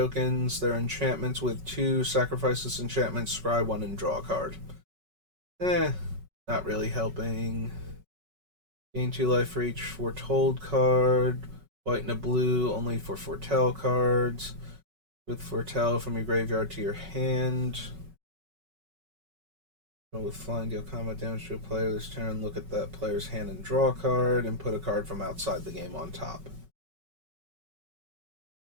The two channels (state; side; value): late; left; 5.3 ms